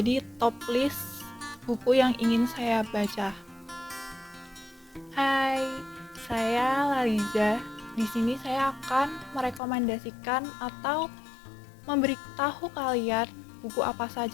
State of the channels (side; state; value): right; drops out; at 9.6 s